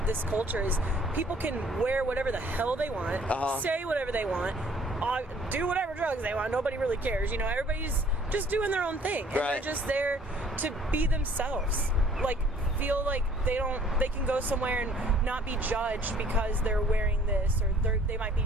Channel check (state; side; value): normal; both; correlation 0.57